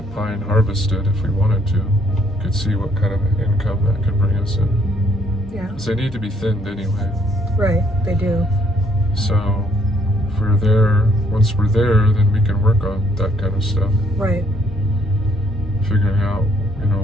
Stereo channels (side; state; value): both; normal; correlation 0.67